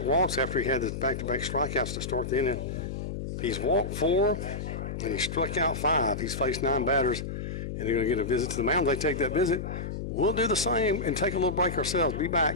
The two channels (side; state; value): left; noise; hum, 5 dB below the sound